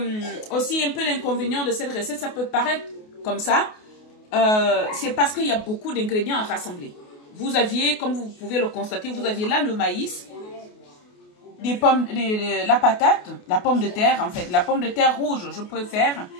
aussi un peu l'inconvénient de cette recette, ça peut paraître comme ça, c'est parce qu'il y a beaucoup d'ingrédients à rassembler. Vous aviez, comme vous pouvez le constater, vous aviez là le maïs, des pommes, la patate, la pomme de terre en fait, la pomme de terre rouge, je préfère,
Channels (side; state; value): right; late; 28 ms